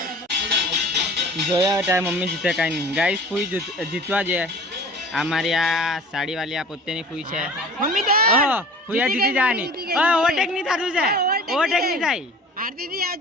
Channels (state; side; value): normal; both; correlation 0.43